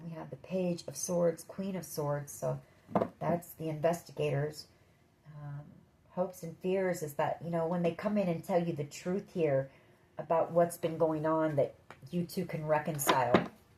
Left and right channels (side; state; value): both; identical; correlation 1.00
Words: we have the Page of Swords, Queen of Swords. So that's the investigators. Hopes and fears is that, you know, when they come in and tell you the truth here about what's been going on, that you two can reconcile.